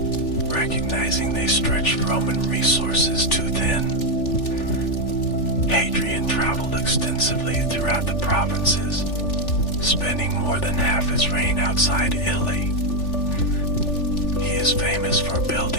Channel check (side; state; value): right; late; 3.4 ms